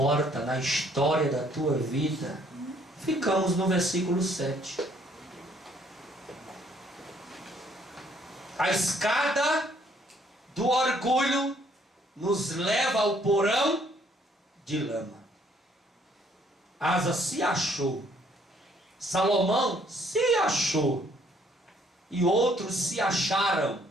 na história da tua vida. Ficamos no versículo 7. A escada do orgulho nos leva ao porão de lama. Asa se achou. Salomão se achou. E outros se acharam.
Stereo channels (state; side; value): normal; both; correlation 0.64